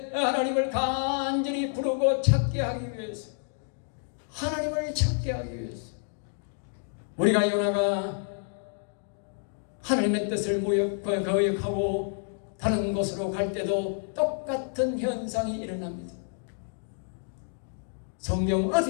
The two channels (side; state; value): right; silent; digital silence